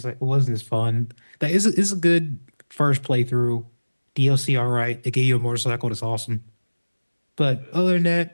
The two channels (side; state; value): both; inverted; correlation -1.00